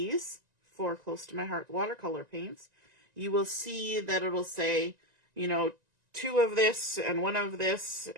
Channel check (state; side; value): late; left; 1.9 ms